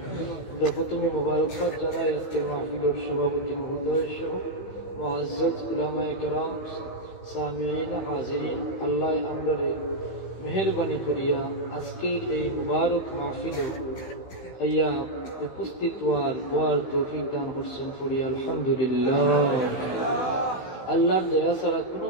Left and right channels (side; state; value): right; late; 16 ms